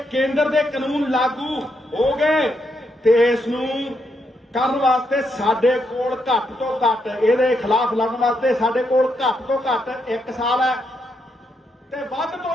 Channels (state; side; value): normal; both; correlation 0.80